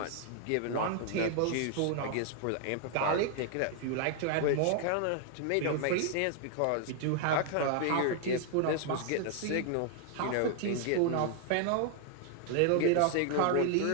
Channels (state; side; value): different; both; correlation 0.00